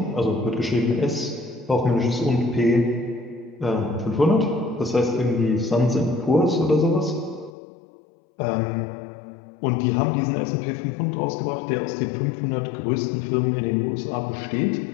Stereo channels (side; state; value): right; drops out; at 7.5 s